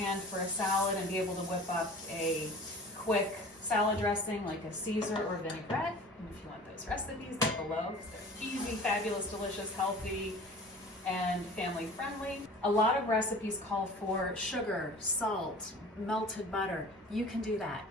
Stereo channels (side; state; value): both; normal; correlation 0.43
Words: for a salad and be able to whip up a quick salad dressing like a Caesar or vinaigrette. And if you want those recipes, they're below because they're easy, fabulous, delicious, healthy, and family friendly. A lot of recipes call for sugar, salt, melted butter. You can do that.